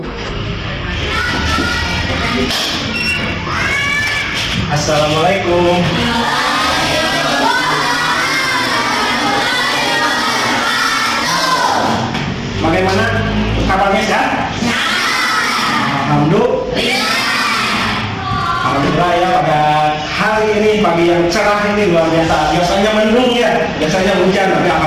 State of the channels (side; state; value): both; identical; correlation 1.00